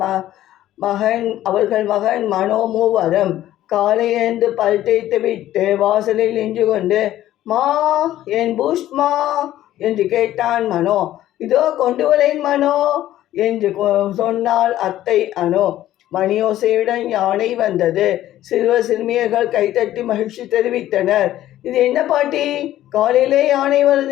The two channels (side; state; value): right; quieter; 13.5 dB